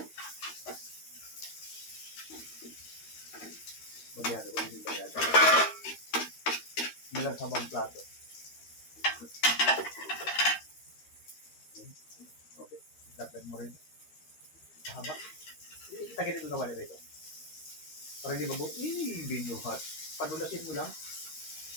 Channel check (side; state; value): right; late; 13 ms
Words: Bagyado, hindi bagyado. Nilang sabang plato. Okay. Dagdag mo rin. Mahaba. Tagilid mo kawali rito. Para hindi mabuo. Binuhat. Padulasin mo lang.